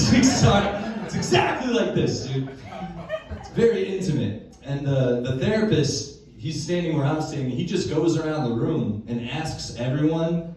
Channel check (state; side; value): identical; both; correlation 1.00